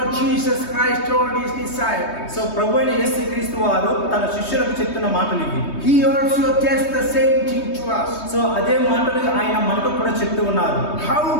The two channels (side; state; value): right; late; 3.2 ms